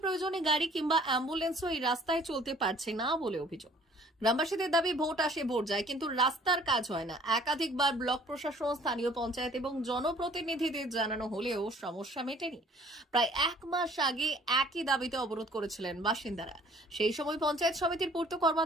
প্রয়োজনে গাড়ি কিংবা অ্যাম্বুলেন্সও এই রাস্তায় চলতে পারছে না বলে অভিযোগ। গ্রামবাসীদের দাবি, ভোট আসে ভোট যায়, কিন্তু রাস্তার কাজ হয় না। একাধিকবার ব্লক প্রশাসন, স্থানীয় পঞ্চায়েত এবং জনপ্রতিনিধিদের জানানো হলেও সমস্যা মেটেনি। প্রায় ১ মাস আগে একই দাবিতে অবরোধ করেছিলেন বাসিন্দারা। সেই সময় পঞ্চায়েত সমিতির পূর্ত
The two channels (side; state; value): both; normal; correlation 0.54